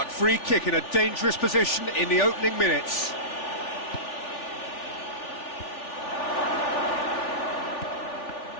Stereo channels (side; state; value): right; late; 3.4 ms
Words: free kick in a dangerous position in the opening minutes.